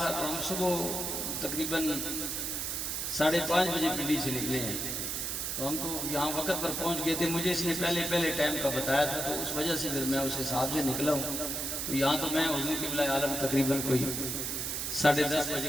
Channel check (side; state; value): right; noise; hiss, 2 dB below the sound